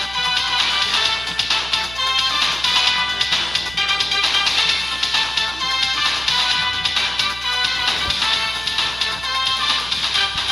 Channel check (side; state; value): right; noise; hum, 16 dB below the sound